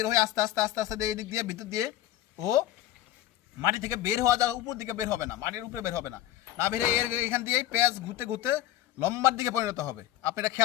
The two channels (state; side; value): quieter; right; 13.7 dB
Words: হয়ে আস্তে আস্তে আস্তে আস্তে এই দিক দিয়ে ভিতর দিয়ে ও মাটি থেকে বের হওয়া যাওয়া উপর দিকে বের হবে না, মাটির উপরে বের হবে না, না বেরে এর এখান দিয়েই পেঁয়াজ ঘুরতে ঘুরতে লম্বার দিকে পরিণত হবে। আপনি এটা